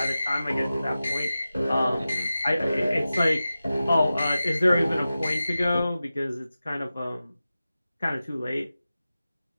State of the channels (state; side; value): inverted; both; correlation -0.94